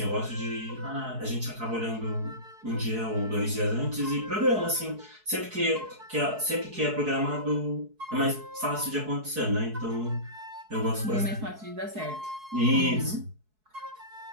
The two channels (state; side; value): late; left; 4.7 ms